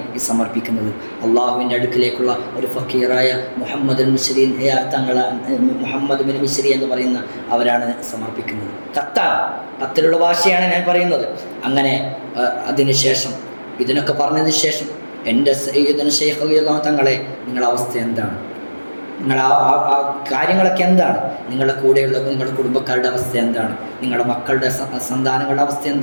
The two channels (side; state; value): both; inverted; correlation -1.00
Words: ഈ സമർപ്പിക്കുന്നത്. അള്ളാഹുവിൻ്റെ അടുക്കിലേക്കുള്ള ഒരു ഫക്കീറായ മുഹമ്മദ് മിശ്രി മുഹമ്മദ് ബിൻ മിശ്രി എന്ന് പറയുന്ന അവരാണ് സമർപ്പിക്കുന്നത്. കത്തിലുള്ള ഭാഷയാണ് ഞാൻ പറയുന്നത്. അങ്ങനെ അതിനുശേഷം ഇതിനൊക്കെ പറഞ്ഞതിന് ശേഷം എൻ്റെ സയ്യിദുനാ ശൈഖ് റളിയല്ലാഹു തങ്ങളെ, നിങ്ങളുടെ അവസ്ഥ എന്താണ്? നിങ്ങൾ ആ കാര്യങ്ങളൊക്കെ എന്താണ്? നിങ്ങളുടെ കൂടെയുള്ള നിങ്ങളുടെ കുടുംബക്കാരുടെ അവസ്ഥ എന്താണ്? നിങ്ങളുടെ മക്കളുടെ സന്താനങ്ങളുടെ അവസ്ഥ